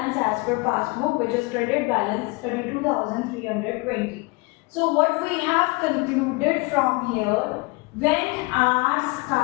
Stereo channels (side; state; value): right; quieter; 26.7 dB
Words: as per passbook, which is credit balance 32,320. So what we have concluded from here, when our